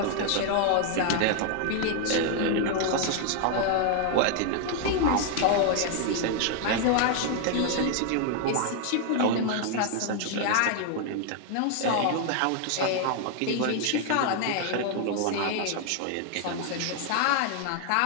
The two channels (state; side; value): different; both; correlation 0.00